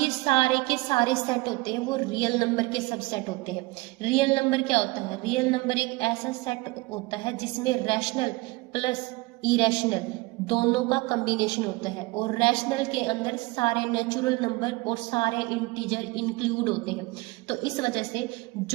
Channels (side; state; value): left; quieter; 22.9 dB